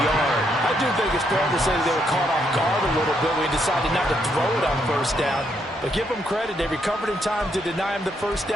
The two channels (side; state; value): both; normal; correlation 0.75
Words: I do think it's fair to say they were caught off guard a little bit when he decided not to throw it on 1st down. But give them credit, they recovered in time to deny him the 1st